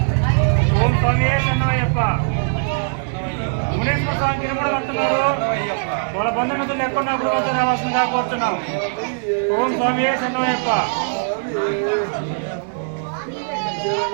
ఓం స్వామి శరణమయ్యప్ప. మునేశ్వర స్వామి గిరుముడు కడుతున్నారు. వాళ్ళ బంధుమిత్రులు ఎక్కడున్నా గుడి వద్దకు రావాల్సిందిగా కోరుతున్నాం. ఓం స్వామి శరణమయ్యప్ప.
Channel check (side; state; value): left; silent; digital silence